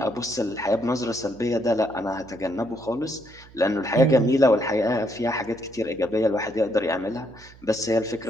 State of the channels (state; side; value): noise; right; hum, 23 dB below the sound